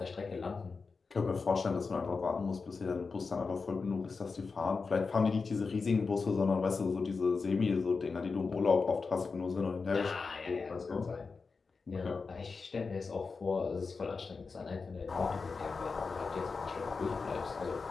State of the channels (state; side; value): quieter; right; 4.6 dB